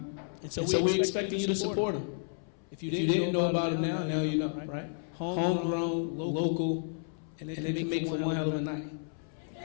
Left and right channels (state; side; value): silent; right; 57 dB below the other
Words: so we're expecting you to support them. If you didn't know about it now you know, right? Homegrown, local, and they can make for one hell of a night.